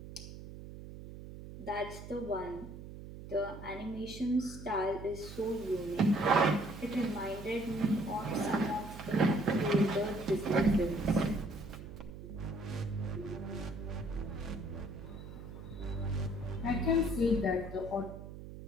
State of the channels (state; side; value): noise; right; hum, 12 dB below the sound